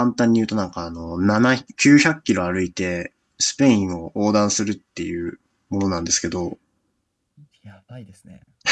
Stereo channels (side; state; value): both; identical; correlation 1.00